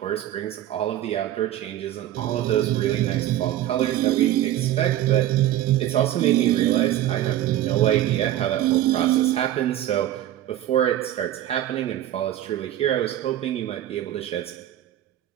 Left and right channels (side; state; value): left; quieter; 12.8 dB